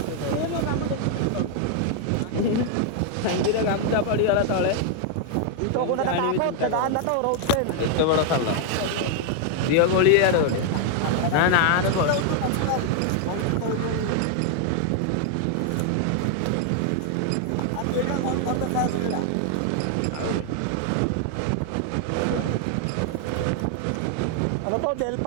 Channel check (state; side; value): different; both; correlation 0.00